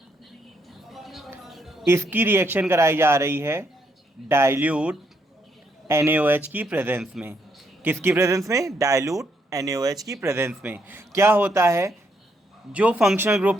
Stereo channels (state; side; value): normal; both; correlation 0.75